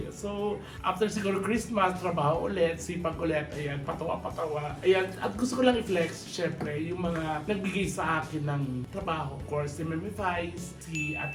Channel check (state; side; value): identical; both; correlation 1.00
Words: So, after siguro Christmas, trabaho ulit, sipag ulit, ayan, patawa-patawa. Ayan, at gusto ko lang i-flex, syempre, yung mga nagbigay sa akin ng trabaho. Of course, si Mami Vice, si